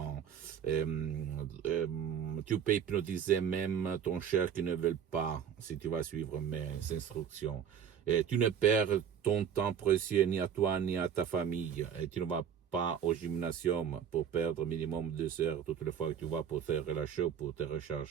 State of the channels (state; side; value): quieter; left; 8.2 dB